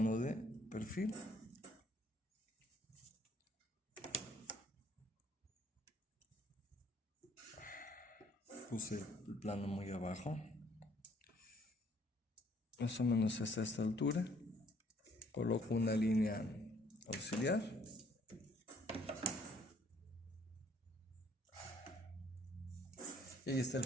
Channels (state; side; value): normal; both; correlation 0.63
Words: de perfil. Puse el plano muy abajo. Más o menos hasta esta altura. Coloco una línea auxiliar. Y ahí está el